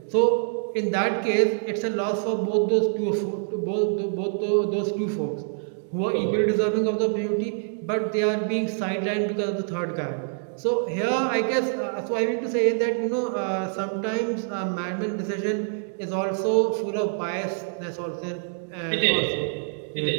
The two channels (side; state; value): left; silent; digital silence